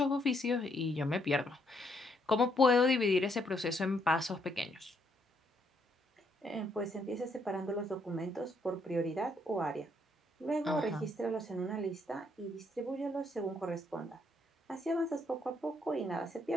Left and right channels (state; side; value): normal; both; correlation 0.72